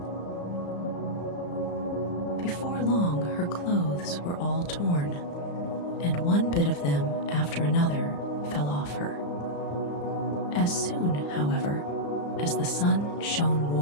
Before long, her clothes were all torn, and one bit of them after another fell off her. As soon, however, as the sun shone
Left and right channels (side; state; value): right; late; 34 ms